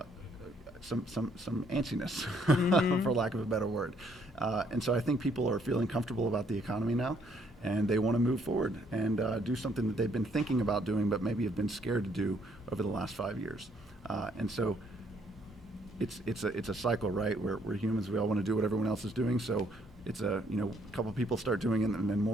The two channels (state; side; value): normal; both; correlation 0.68